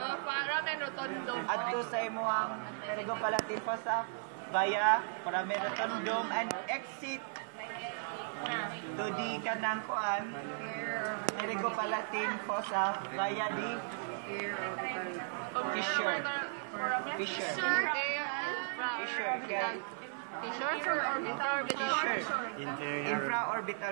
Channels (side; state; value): left; silent; 54 dB below the other